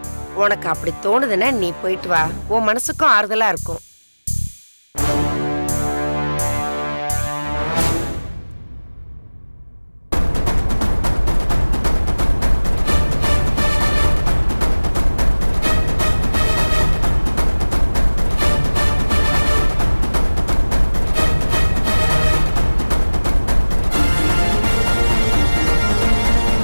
உனக்கு அப்படி தோணுதுன்னா நீ போயிட்டு வா. உன் மனசுக்கும் ஆறுதலா இருக்கும்.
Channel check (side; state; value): both; inverted; correlation -1.00